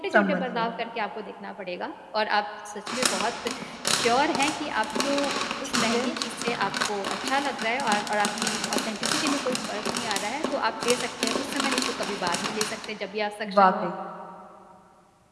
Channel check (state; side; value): identical; both; correlation 1.00